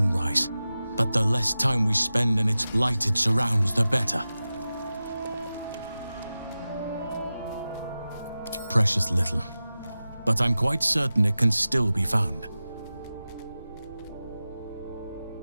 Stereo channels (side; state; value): both; inverted; correlation -0.95